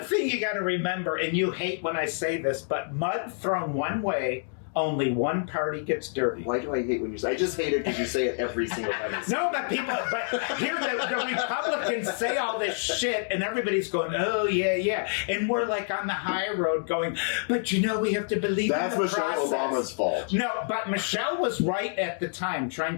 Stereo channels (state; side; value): silent; right; digital silence